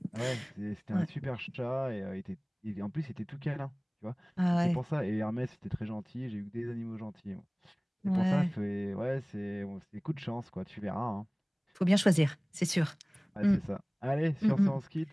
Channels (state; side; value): identical; both; correlation 1.00